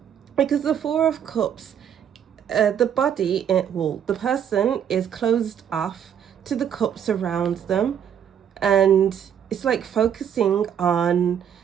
because the Four of Cups, the body, the person is closed off to the cups around them, and it's like focusing on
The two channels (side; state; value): left; quieter; 8.9 dB